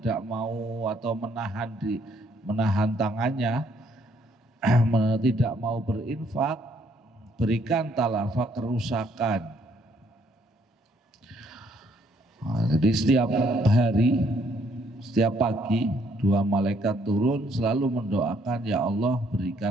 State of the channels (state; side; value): normal; both; correlation 0.68